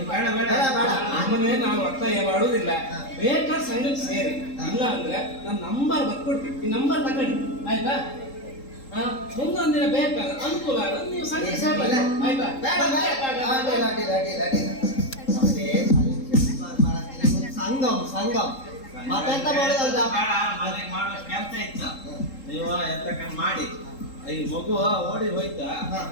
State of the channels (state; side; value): late; right; 3.7 ms